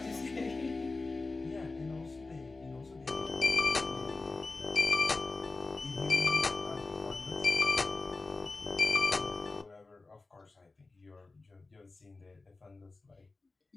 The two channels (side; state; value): right; quieter; 3.6 dB